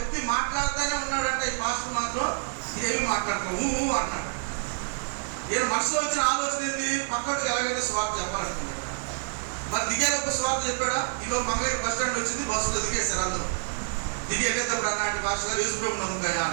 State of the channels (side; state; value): left; silent; 60 dB below the other